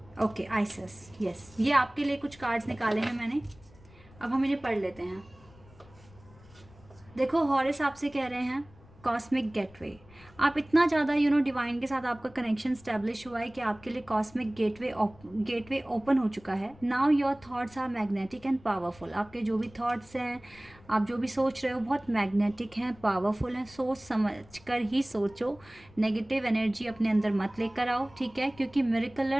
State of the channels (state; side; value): noise; left; rumble, 24 dB below the sound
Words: ओके, आइसिस, यस, ये आपके लिए कुछ कार्ड्स निकाले हैं मैंने, अब हम इन्हें पढ़ लेते हैं। देखो, हॉरिस आपसे कह रहे हैं कॉस्मिक गेटवे। आप इतना ज़्यादा डिवाइन के साथ आपका कनेक्शन स्टैब्लिश हुआ है कि आपके लिए कॉस्मिक गेटवे ओपन हो चुका है। Now your thoughts are magnetic and powerful. आपके जो भी थॉट्स हैं, आप जो भी सोच रहे हो, बहुत मैग्नेटिक हैं, पावरफुल हैं। सोच समझ कर ही सोचो, नेगेटिव एनर्जी अपने अंदर मत लेकर आओ, ठीक है, क्योंकि